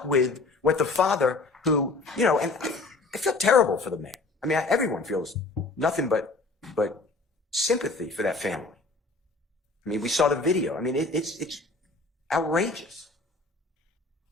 with what the father who, you know, and I feel terrible for the man. I mean, everyone feels nothing but sympathy for that family. I mean, we saw the video. I mean, it's outrageous.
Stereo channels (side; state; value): right; quieter; 3.5 dB